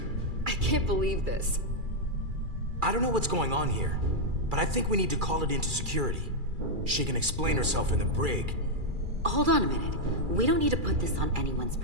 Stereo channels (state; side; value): late; left; 2.3 ms